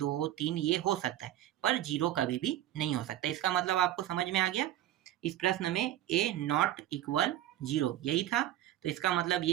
3 ये हो सकता है, पर 0 कभी भी नहीं हो सकता। इसका मतलब आपको समझ में आ गया। इस प्रश्न में a नॉट इक्वल 0 यही था, तो इसका मतलब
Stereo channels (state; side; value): quieter; left; 12.9 dB